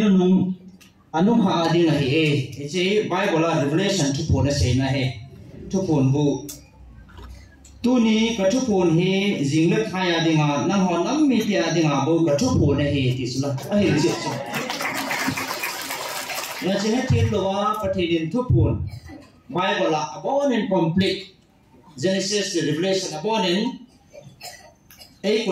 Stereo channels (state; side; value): identical; both; correlation 1.00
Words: anh ha đi này thì chỉ Bible là Revelation chụp buồn là gì này chụp buồn bu tu ni cái chụp buồn he riêng lớp hai đi ngà năng họ nắm mi tia đi ngà bu cái chụp buồn này thì là ai gì là chỉ hết thiên lo cái thì đến chụp buồn Bible là about and complete Genesis to Revelation about in ai